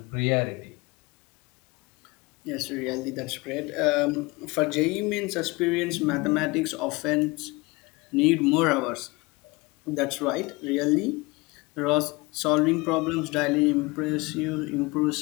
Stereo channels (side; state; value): right; quieter; 24.4 dB